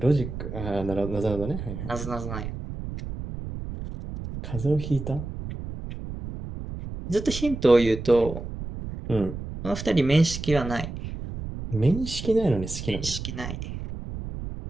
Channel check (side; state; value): right; noise; rumble, 8 dB below the sound